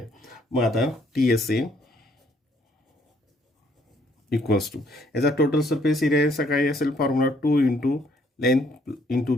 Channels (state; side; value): normal; both; correlation 0.66